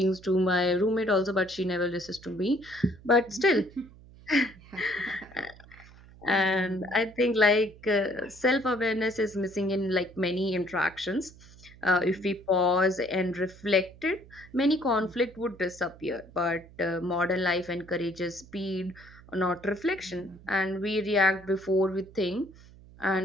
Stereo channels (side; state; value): right; noise; hum, 22 dB below the sound